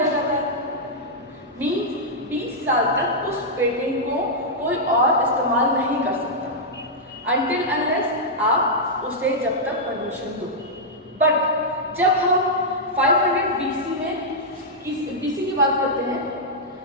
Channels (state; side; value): normal; both; correlation -0.07